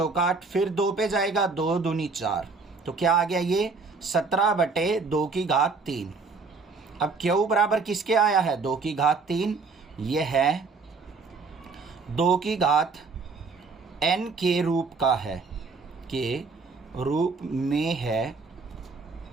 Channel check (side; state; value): left; quieter; 4.4 dB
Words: 8, फिर 2 पे जाएगा 2 दूनी 4, तो क्या आ गया? ये 17/2 की घात 3। अब Q बराबर किसके आया है? 2 की घात 3। यह है 2 की घात n के रूप का है, के रूप में है,